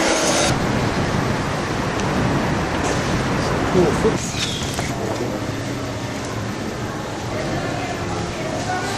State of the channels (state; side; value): identical; both; correlation 1.00